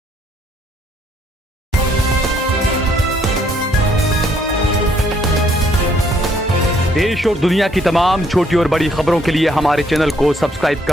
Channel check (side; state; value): both; normal; correlation 0.67